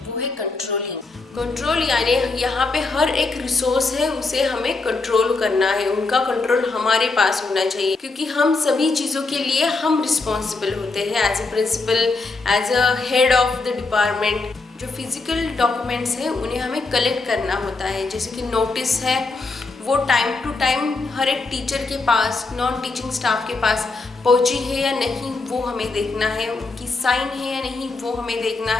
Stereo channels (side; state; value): right; quieter; 3.7 dB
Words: वो है कंट्रोलिंग। कंट्रोल यानी यहाँ पे हर एक रिसोर्स है उसे हमें कंट्रोल करना है, उनका कंट्रोल हमारे पास होना चाहिए, क्योंकि हम सभी चीज़ों के लिए हम रिस्पॉन्सिबल होते हैं as a principal, as a head of the department. जो फिजिकल डॉक्यूमेंट्स हैं उन्हें हमें कलेक्ट करना होता है, जैसे कि नोटिस है वो टाइम टू टाइम हर एक टीचर के पास, नॉन टीचिंग स्टाफ के पास पहुंची है या नहीं वो हमें देखना है, उनकी साइन है या नहीं वो हमें देखना